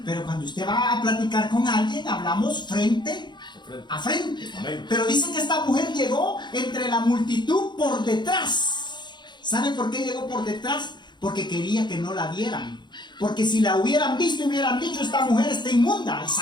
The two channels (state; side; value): late; right; 0.22 ms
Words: Pero cuando usted va a platicar con alguien, hablamos frente a frente. Amén. Pero dice que esta mujer llegó entre la multitud por detrás. ¿Sabe por qué llegó por detrás? Porque quería que no la vieran. Porque si la hubieran visto y hubieran dicho, esta mujer está inmunda,